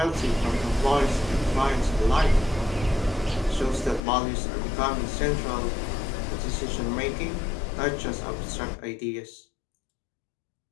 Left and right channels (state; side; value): drops out; right; at 4.0 s